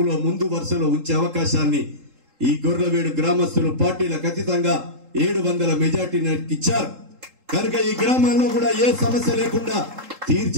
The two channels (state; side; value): late; left; 3.8 ms